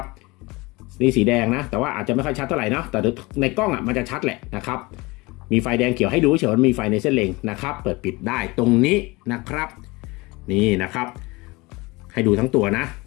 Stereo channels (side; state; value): right; quieter; 23.8 dB